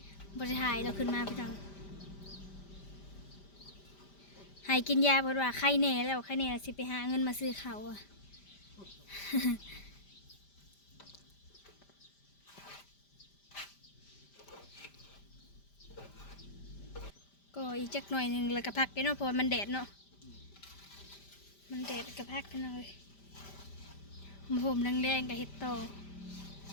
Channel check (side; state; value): right; late; 5.1 ms